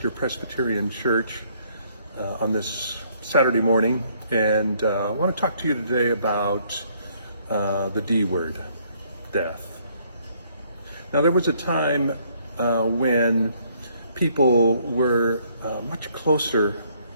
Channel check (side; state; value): both; inverted; correlation -0.66